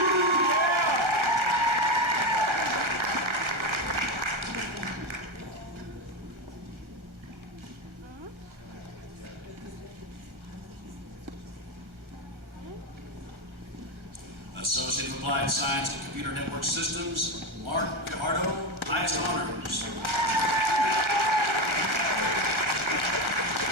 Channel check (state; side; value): late; left; 1.4 ms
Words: Associate of Applied Science and Computer Network Systems, Mark Pijardo, highest honors.